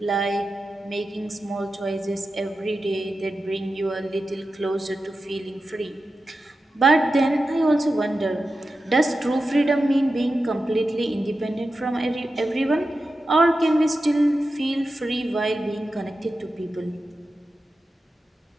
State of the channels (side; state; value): both; normal; correlation 0.92